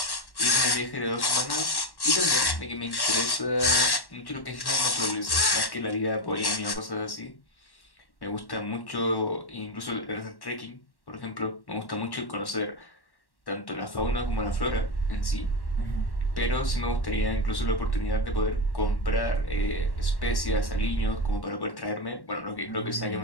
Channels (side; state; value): right; late; 1.1 ms